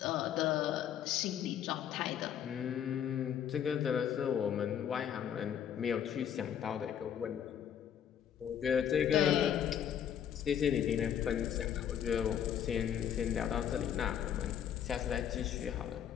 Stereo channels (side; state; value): right; quieter; 9.2 dB